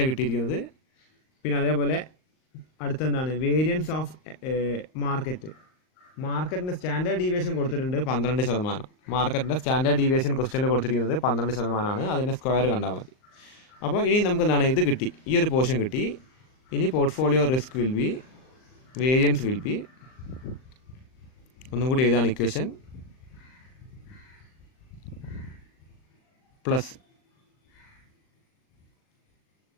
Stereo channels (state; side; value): late; right; 39 ms